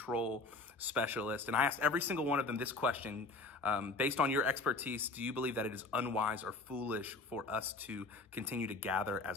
specialists. And I asked every single one of them this question, based on your expertise, do you believe that it is unwise or foolish for us to continue to gather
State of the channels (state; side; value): quieter; right; 3.4 dB